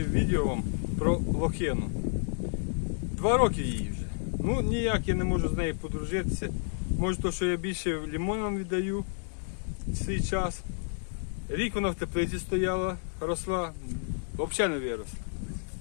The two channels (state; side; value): silent; right; digital silence